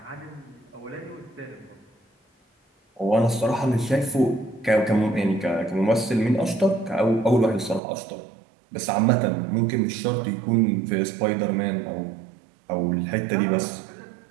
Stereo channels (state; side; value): drops out; left; at 7.8 s